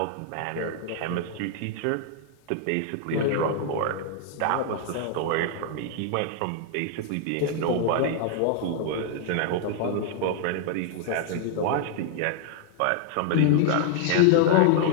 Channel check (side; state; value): both; different; correlation 0.00